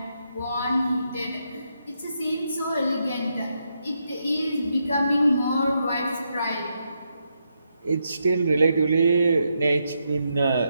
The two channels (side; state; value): both; inverted; correlation -0.81